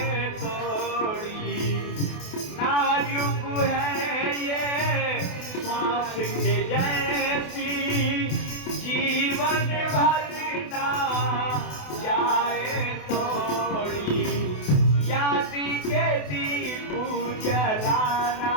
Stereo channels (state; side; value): late; right; 28 ms